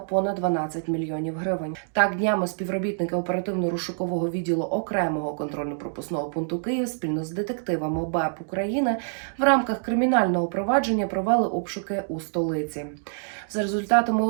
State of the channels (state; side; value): silent; left; digital silence